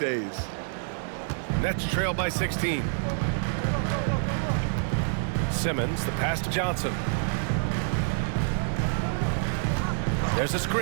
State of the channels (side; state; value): left; silent; digital silence